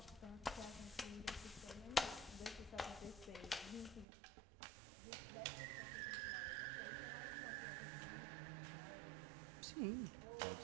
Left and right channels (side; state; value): left; drops out; at 4.0 s